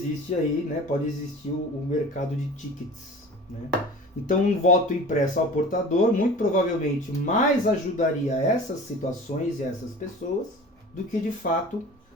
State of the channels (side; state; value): both; normal; correlation 0.39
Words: aí, né? Pode existir o mercado de tickets, né? Então, um voto impresso ao portador, muito provavelmente, mais ajudaria essas situações e essas pessoas do que, de fato,